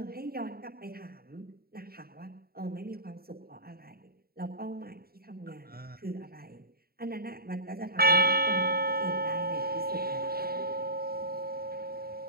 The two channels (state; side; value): late; left; 0.44 ms